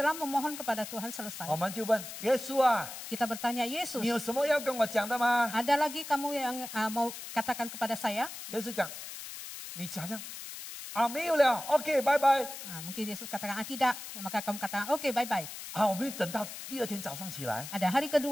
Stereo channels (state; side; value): noise; left; hiss, 10 dB below the sound